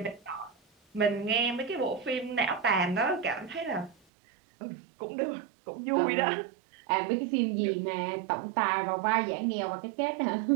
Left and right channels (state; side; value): drops out; left; at 4.0 s